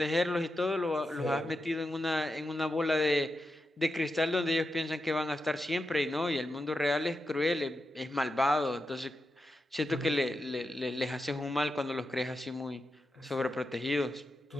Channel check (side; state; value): both; normal; correlation 0.88